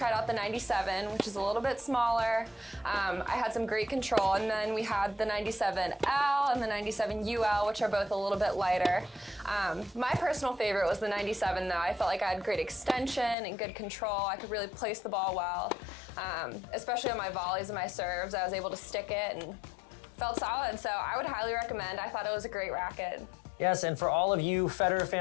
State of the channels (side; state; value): right; drops out; at 13.4 s